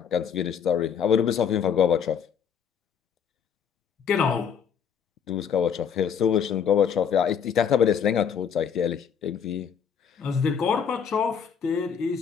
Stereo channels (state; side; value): quieter; right; 7.4 dB